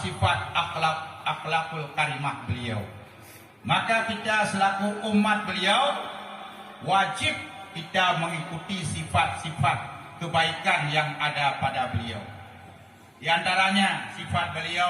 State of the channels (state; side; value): identical; both; correlation 1.00